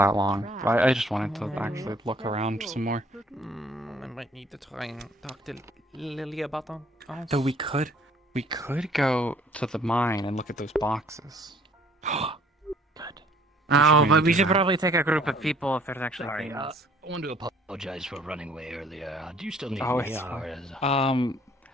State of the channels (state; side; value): normal; both; correlation 0.58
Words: long. But I just wanted to actually look around some more. I might need to try and talk to Lily about them. So we could go to the mine and look at those boxes. Oh, maybe but we do should that. probably take a group of people if there's actually Sorry, things. I want to apologize for running away earlier. Do you still need Oh, me? it's Or is...